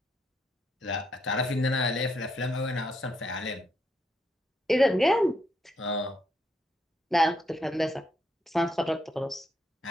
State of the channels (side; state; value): both; normal; correlation 0.76